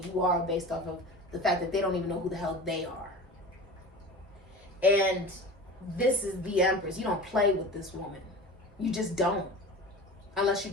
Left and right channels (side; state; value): both; normal; correlation 0.35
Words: are based off of the fact that they don't even know who the hell they are. And this is the Empress. You don't play with this woman. You just don't. Unless you're